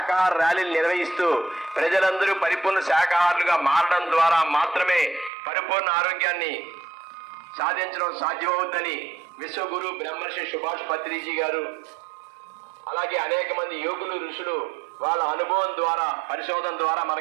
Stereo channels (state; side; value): drops out; left; at 5.3 s